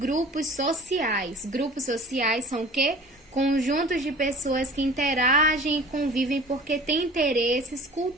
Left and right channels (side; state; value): both; normal; correlation 0.43